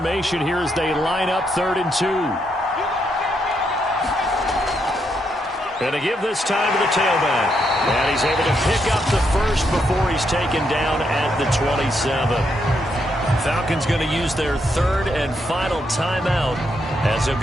here as they line up 3rd and 2. And to give this time to the tailback. And he's able to pick up the first before he's taken down at the 27. Falcons going to use their 3rd and final timeout as they'll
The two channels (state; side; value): normal; both; correlation 0.78